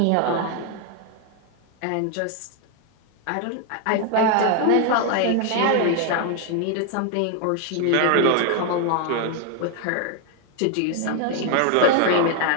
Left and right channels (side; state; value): both; different; correlation 0.00